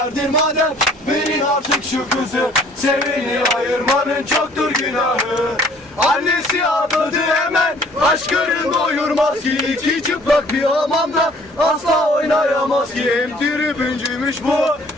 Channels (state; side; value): normal; both; correlation 0.56